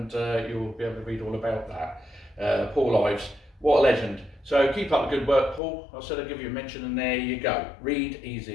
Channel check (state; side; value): drops out; right; at 5.6 s